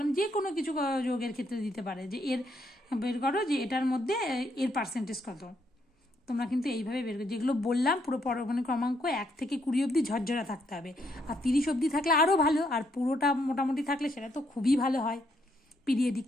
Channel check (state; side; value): normal; both; correlation 0.74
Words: যে কোনো কিছু যোগের ক্ষেত্রে দিতে পারে, যে এর বের করো যে এটার মধ্যে এর পার্সেন্টেজ কত। তোমরা কিন্তু এইভাবে বের করো, যেগুলো বললাম পুরো পরমাণু ক্রমাঙ্ক 1 থেকে 20 অবধি ঝরঝরা থাকতে হবে, আর 30 অবধি থাকলে আরও ভালো, আর পুরোটা মোটামুটি থাকলে সেটা তো খুবই ভালো হয়। পিরিয়ডিক